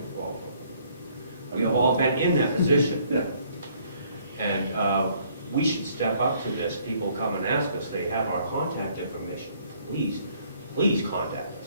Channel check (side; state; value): both; inverted; correlation -0.63